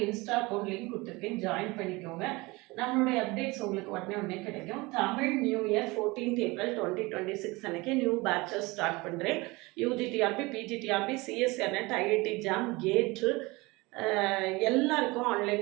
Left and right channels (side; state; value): left; quieter; 23.4 dB